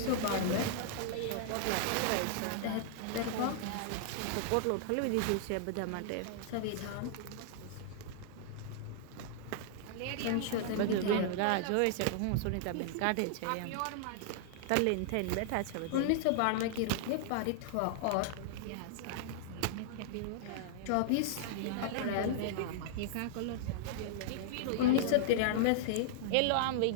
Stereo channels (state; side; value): different; both; correlation -0.01